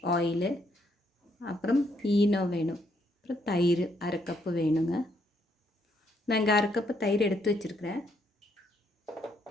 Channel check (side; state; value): both; normal; correlation 0.73